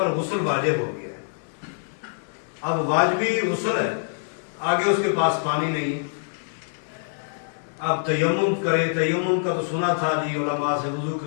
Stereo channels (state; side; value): silent; right; 62 dB below the other